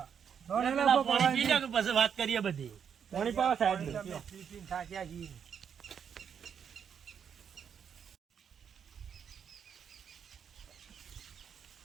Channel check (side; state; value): left; quieter; 7.6 dB